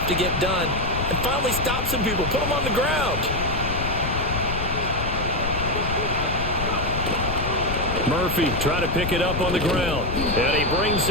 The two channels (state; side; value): noise; left; rumble, 4 dB below the sound